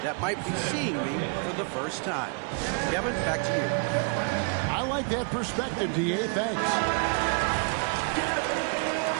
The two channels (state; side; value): quieter; left; 39.2 dB